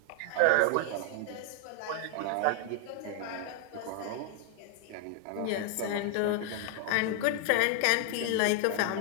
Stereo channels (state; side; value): different; both; correlation 0.00